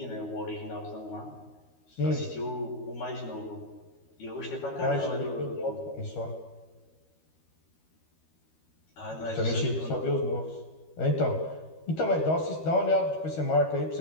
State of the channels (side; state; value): right; late; 13 ms